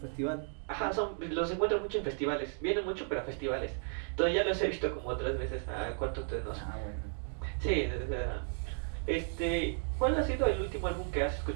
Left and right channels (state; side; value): silent; left; 55 dB below the other